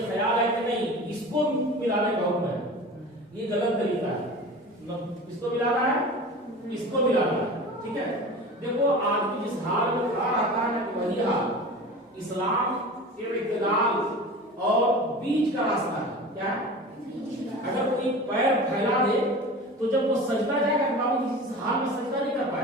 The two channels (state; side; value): normal; both; correlation 0.35